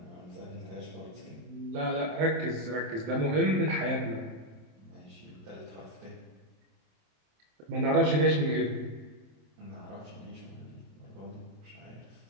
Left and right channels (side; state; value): left; late; 27 ms